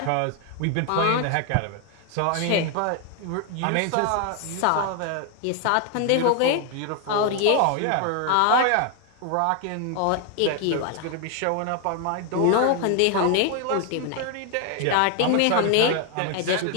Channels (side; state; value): both; different; correlation 0.00